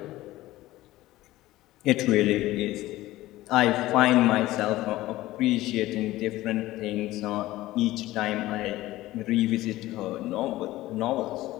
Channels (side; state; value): right; quieter; 16.8 dB